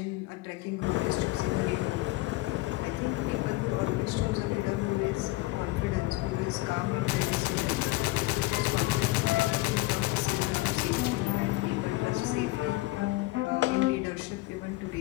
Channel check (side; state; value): right; quieter; 20.3 dB